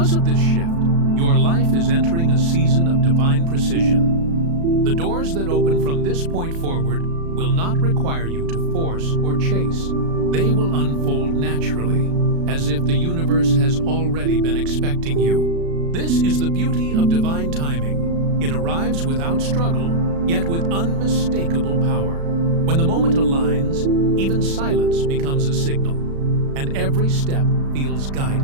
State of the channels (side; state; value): left; late; 36 ms